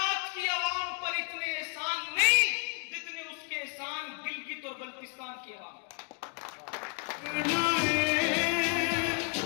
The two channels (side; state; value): right; quieter; 36.3 dB